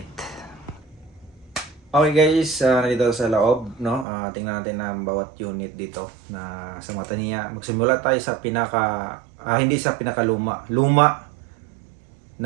Okay guys, nandito sa loob, no? Tingnan natin ang bawat unit dito na sa mata niya. Magsimula tayo sa hindi sa pinakaluma. Luma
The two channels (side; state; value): left; drops out; at 4.0 s